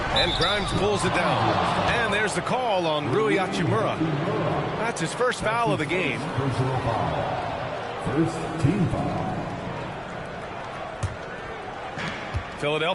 And Grimes pulls it down. And there's the call on Rui Hachimura. That's his first foul of the game. Personal foul. First team foul.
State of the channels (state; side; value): identical; both; correlation 1.00